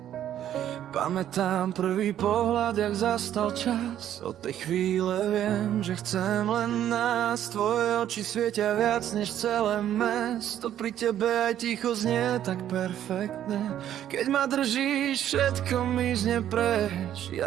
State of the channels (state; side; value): quieter; left; 11.1 dB